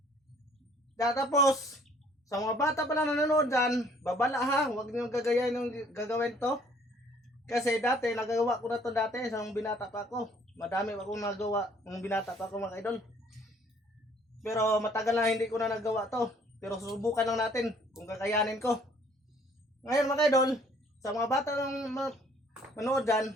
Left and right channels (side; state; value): both; normal; correlation 0.59